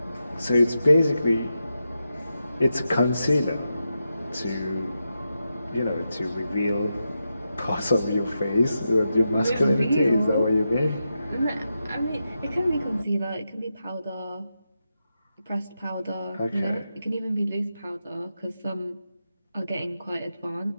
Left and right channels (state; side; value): inverted; both; correlation -0.88